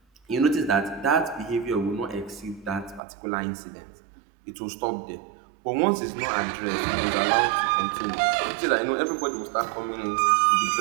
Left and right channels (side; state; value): left; drops out; at 3.0 s